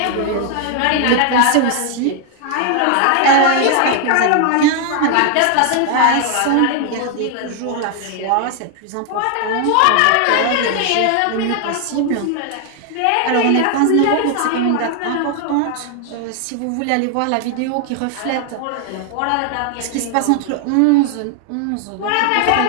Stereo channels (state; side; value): different; both; correlation 0.00